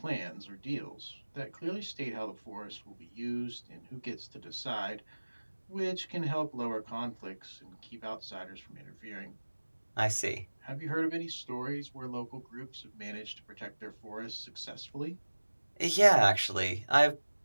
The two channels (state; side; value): inverted; both; correlation -1.00